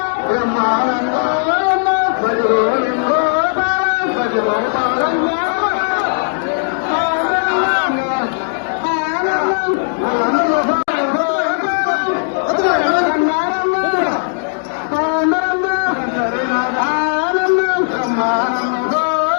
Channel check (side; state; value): right; silent; digital silence